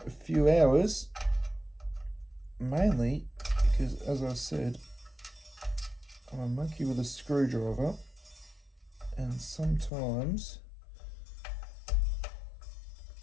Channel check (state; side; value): drops out; right; at 9.9 s